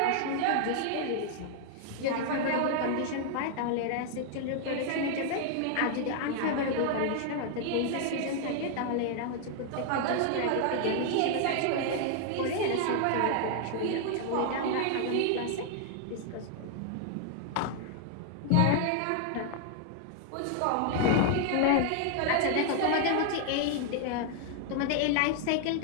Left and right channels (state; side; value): different; both; correlation 0.00